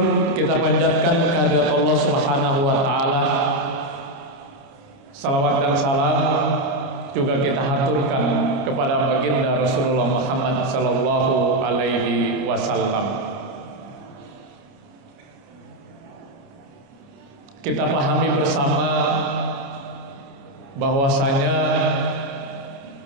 kita panjatkan kehadirat Allah Subhanahu wa taala. Salawat dan salam juga kita haturkan kepada baginda Rasulullah Muhammad sallallahu alaihi wasallam. Kita pahami bersama bahwasanya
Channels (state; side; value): late; left; 29 ms